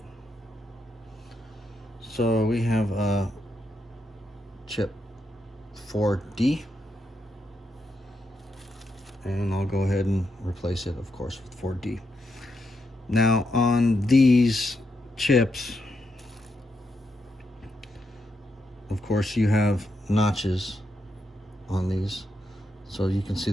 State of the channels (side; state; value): both; normal; correlation 0.82